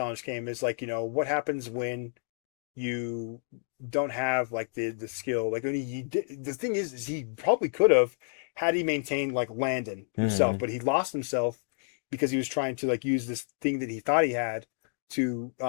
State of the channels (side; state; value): right; silent; digital silence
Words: came is like what happens when you don't have like the skill, like when the thing is he probably could have had he maintained like Landon himself, Mm-hmm. but he lost himself because he was trying to like use this thing that he thought he had to